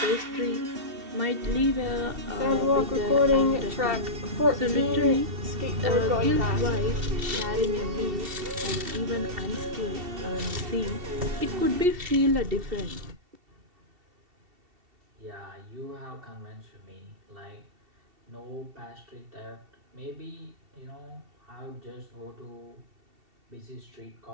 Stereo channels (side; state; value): left; late; 2.7 ms